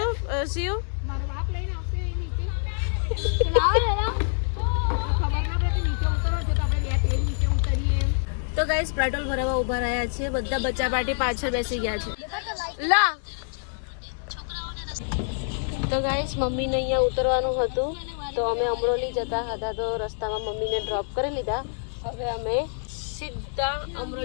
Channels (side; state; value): right; silent; digital silence